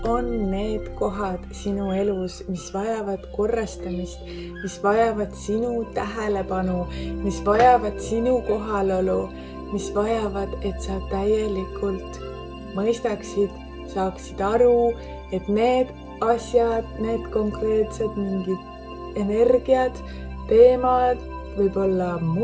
on need kohad sinu elus, mis vajavad korrastamist, mis vajavad sinu tähelepanu, mis vajavad sinu kohalolu, mis vajavad, et sa täielikult mõistaksid, saaksid aru, et need asjad, need konkreetsed mingid energiad, teemad, võib-olla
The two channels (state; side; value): identical; both; correlation 1.00